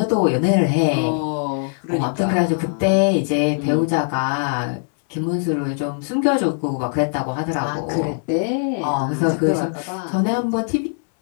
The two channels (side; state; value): right; silent; 65 dB below the other